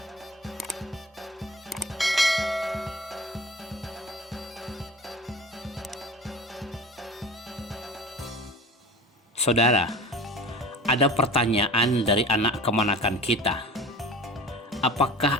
Saudara, ada pertanyaan dari anak kemanakan kita. Apakah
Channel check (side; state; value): both; normal; correlation 0.38